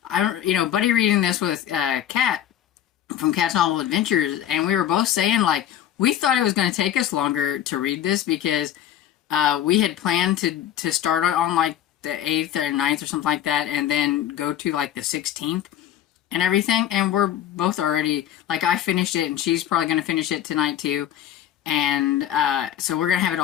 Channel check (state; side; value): quieter; right; 11.0 dB